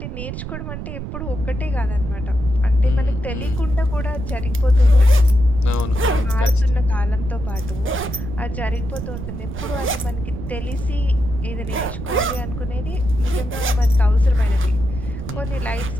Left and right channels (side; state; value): right; noise; rumble, 7 dB below the sound